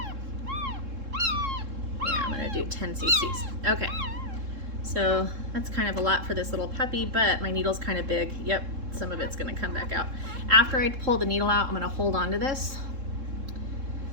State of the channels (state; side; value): late; left; 3.7 ms